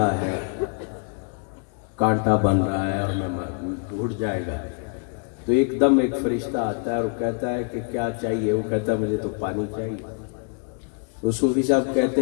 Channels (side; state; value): right; quieter; 40.0 dB